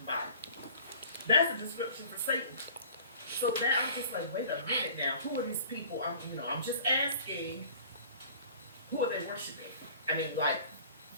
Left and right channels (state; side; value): inverted; both; correlation -0.47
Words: Bible. That's a description for Satan. So that I'm just like, wait a minute now. Who are these people? I'm just asking, who are they worshiping? I mean, like,